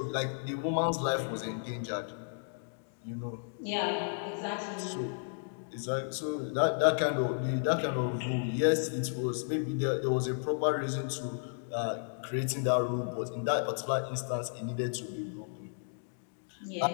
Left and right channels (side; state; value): right; silent; digital silence